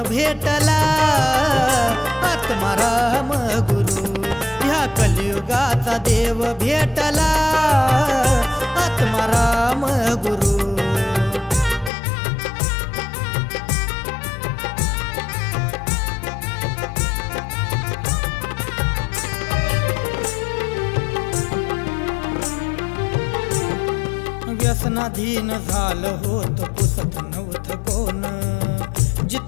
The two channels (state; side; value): drops out; right; at 11.9 s